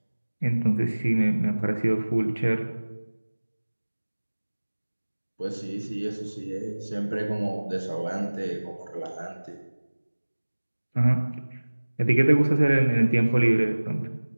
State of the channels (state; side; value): inverted; both; correlation -1.00